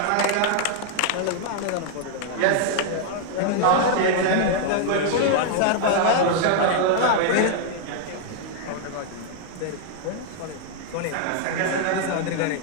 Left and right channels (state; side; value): different; both; correlation 0.00